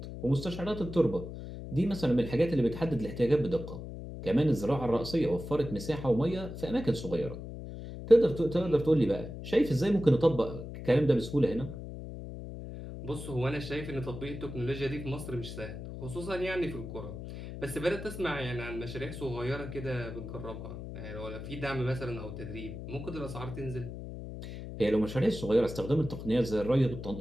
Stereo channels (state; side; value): noise; left; hum, 9 dB below the sound